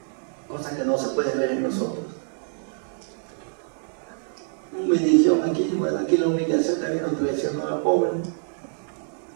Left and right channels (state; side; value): silent; left; digital silence